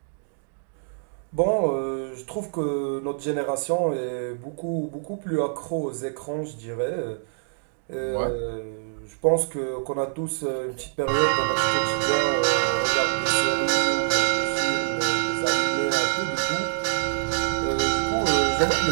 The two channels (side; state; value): left; silent; digital silence